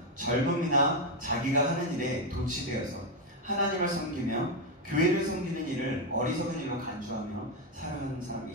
젊음이나 자기가 하는 일에 도취되어서 하나님을 섬기며 교회를 섬기는 일을 어리석은 일로 간주하며 살아가는 사람이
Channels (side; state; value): both; normal; correlation 0.06